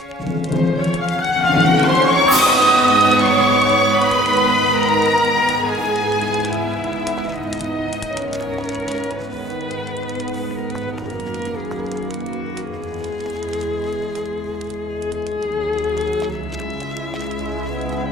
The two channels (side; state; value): both; normal; correlation 0.58